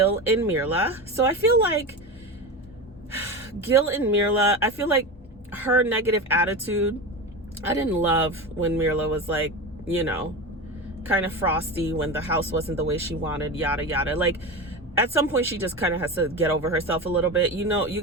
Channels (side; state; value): both; normal; correlation 0.24